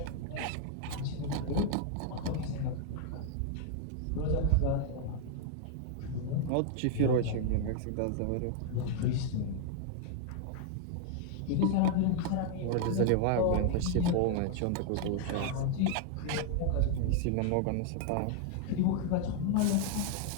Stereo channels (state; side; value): different; both; correlation 0.00